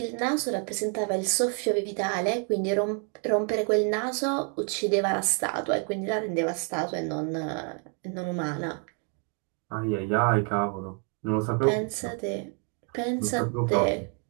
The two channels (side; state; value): left; quieter; 36.6 dB